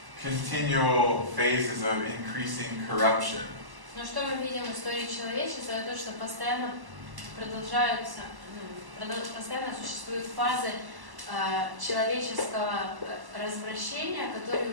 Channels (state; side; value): late; left; 1.1 ms